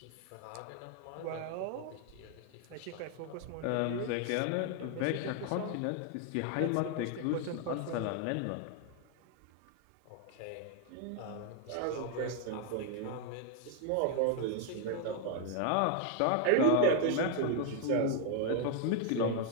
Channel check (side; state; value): both; different; correlation 0.00